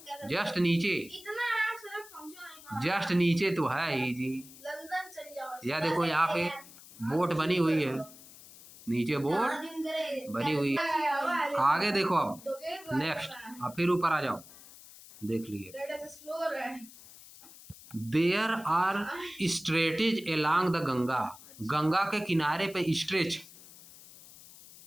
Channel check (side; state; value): left; noise; hiss, 19 dB below the sound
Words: जस्ट नीचे, जस्ट नीचे तो है ही जी। या देखो यहाँ पे बोट बनी हुई है, नीचे बोट बनी हुई है। आगे देखो, अब नेक्स्ट, अब फिर ऊपर आ जाओ, देख लिए। There are stretches along the Ganga, Ganga के किनारे पे स्ट्रेच,